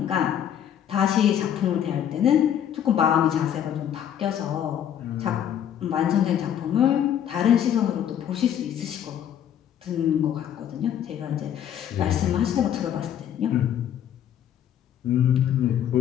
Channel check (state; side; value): quieter; right; 9.8 dB